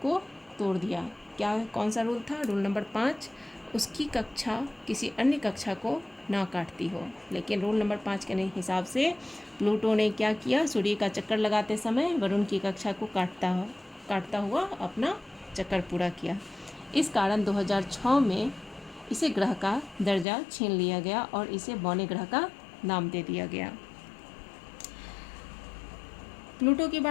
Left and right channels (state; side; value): drops out; right; at 20.2 s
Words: तोड़ दिया। कौन सा रूल था? रूल नंबर 5, उसकी कक्षा किसी अन्य कक्षा को ना काटती हो। लेकिन रूल नंबर 5 के हिसाब से प्लूटो ने क्या किया? सूर्य का चक्कर लगाते समय वरुण की कक्षा को काटता हुआ अपना चक्कर पूरा किया। इस कारण 2006 में इसे ग्रह का दर्जा छीन लिया गया और इसे बौने ग्रह का नाम दे दिया गया। प्लूटो के